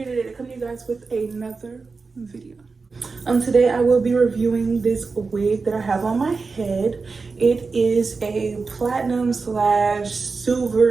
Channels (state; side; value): quieter; left; 4.4 dB